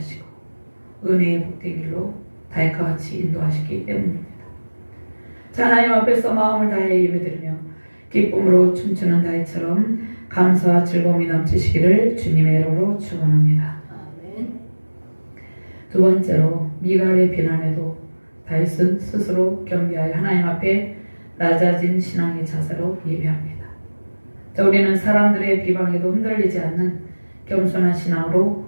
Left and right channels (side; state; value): both; inverted; correlation -1.00